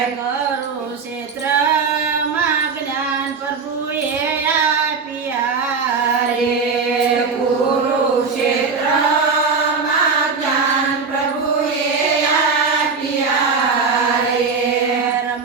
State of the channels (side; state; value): left; quieter; 5.0 dB